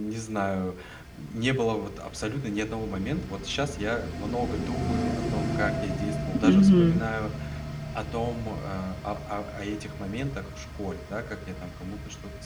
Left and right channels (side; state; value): both; identical; correlation 1.00